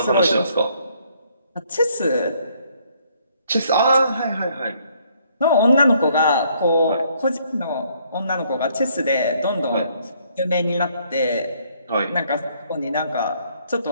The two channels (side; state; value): both; inverted; correlation -0.67